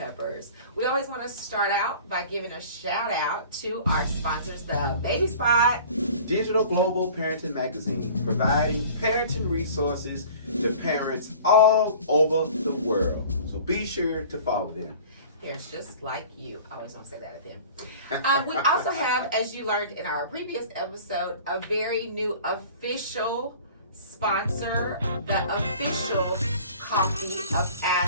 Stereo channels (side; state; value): both; inverted; correlation -0.44